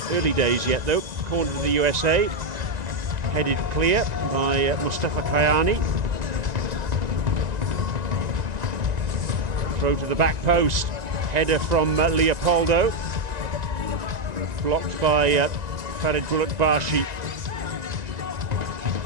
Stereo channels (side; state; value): left; late; 1.9 ms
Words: Early days yet, though. Corner to the USA, headed clear by Mustafa Kayani. Throw to the back post, header from Leopoldo, blocked by Farid Bulutbashi.